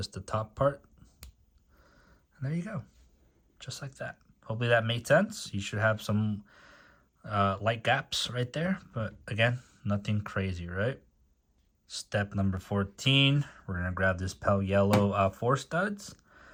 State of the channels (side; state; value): both; identical; correlation 1.00